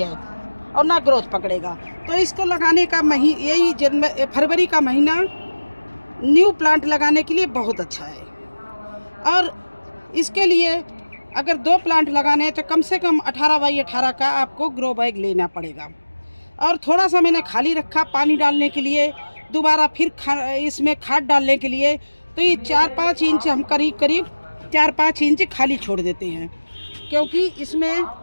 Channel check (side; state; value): both; inverted; correlation -1.00